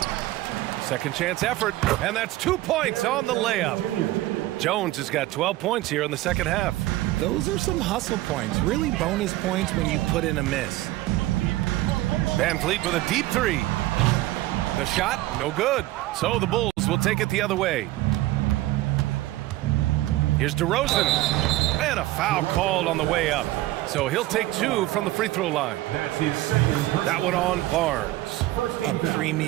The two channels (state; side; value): quieter; left; 17.1 dB